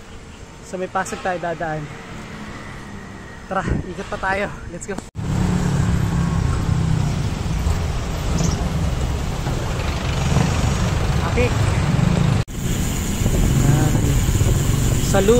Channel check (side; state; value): both; identical; correlation 1.00